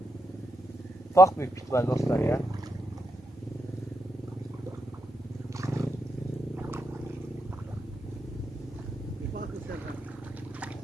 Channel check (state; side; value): normal; both; correlation 0.82